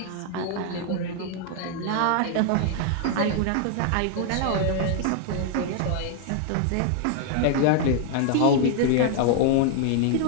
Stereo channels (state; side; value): different; both; correlation 0.00